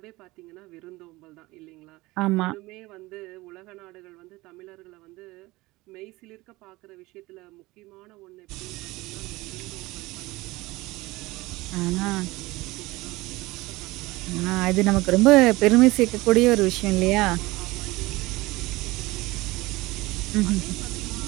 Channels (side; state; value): left; quieter; 20.7 dB